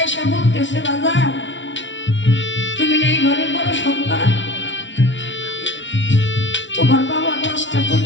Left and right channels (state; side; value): late; right; 0.55 ms